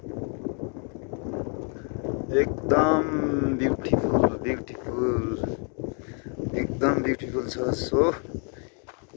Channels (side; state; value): right; quieter; 39.9 dB